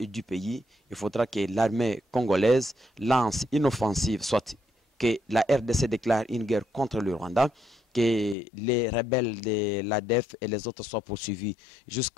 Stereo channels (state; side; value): drops out; right; at 8.3 s